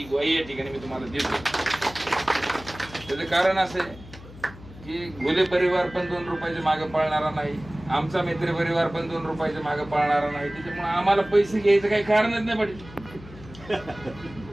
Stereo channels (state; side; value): noise; left; hum, 17 dB below the sound